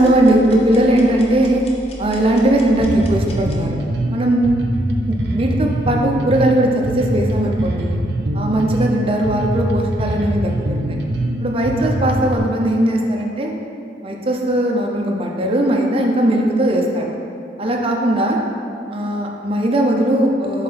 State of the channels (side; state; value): both; normal; correlation 0.71